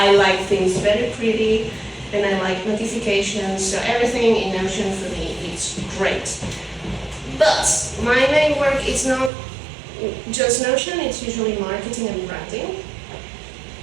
like things very pretty, and I like notifications, so everything in Notion for me is great. But my main work is not just Notion, it's usually marketing and branding.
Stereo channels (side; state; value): left; drops out; at 9.3 s